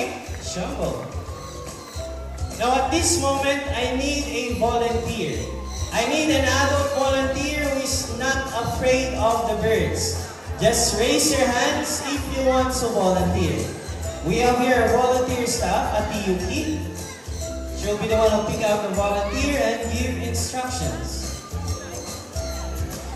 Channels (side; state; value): both; identical; correlation 1.00